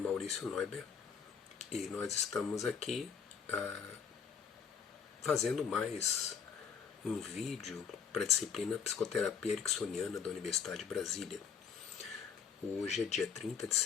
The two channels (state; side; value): quieter; right; 6.9 dB